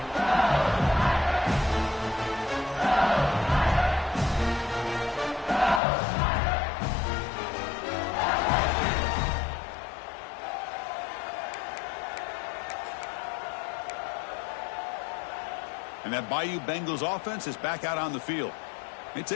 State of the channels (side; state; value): right; drops out; at 5.8 s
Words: And that Bayou Bengals offense is back out on the field. They